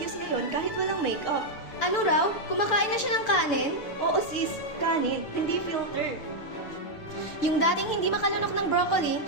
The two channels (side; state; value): right; late; 6.9 ms